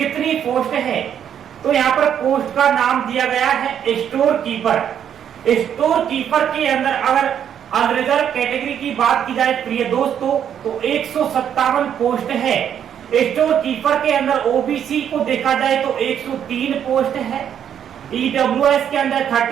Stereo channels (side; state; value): left; quieter; 9.1 dB